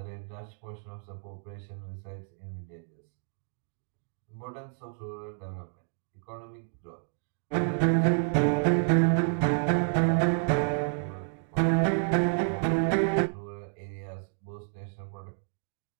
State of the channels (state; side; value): silent; left; digital silence